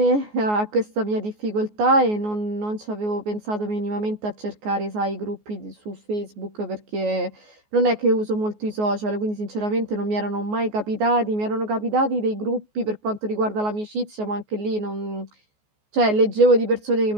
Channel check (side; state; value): left; late; 14 ms